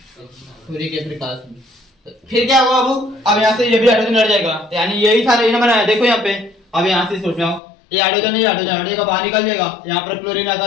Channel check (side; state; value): right; drops out; at 7.6 s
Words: के प्रकाश में। फिर क्या होगा बाबू? अब यहाँ से ये भी हाइड्रोजन हट जाएगा, यानी यही था यही बनाया। देखो यहाँ पे, अब यहाँ से सोच रहा हूँ ये हाइड्रोजन हटेगा, बाहर निकल जाएगा। यहाँ पर क्लोरीन आता